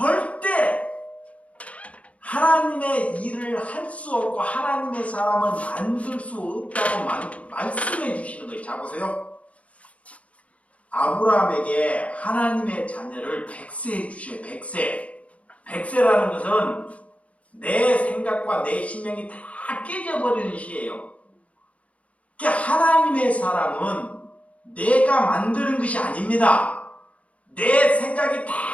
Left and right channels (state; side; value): late; right; 0.065 ms